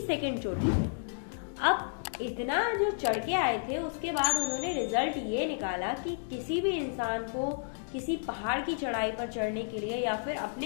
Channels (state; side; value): silent; right; digital silence